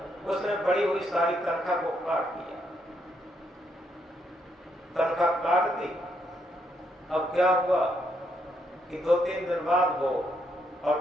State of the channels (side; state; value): both; normal; correlation 0.76